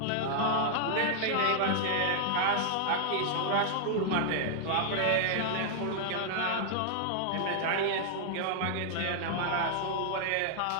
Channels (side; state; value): both; different; correlation -0.01